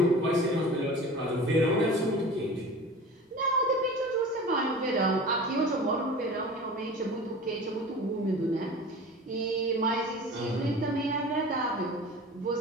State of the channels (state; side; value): normal; both; correlation 0.38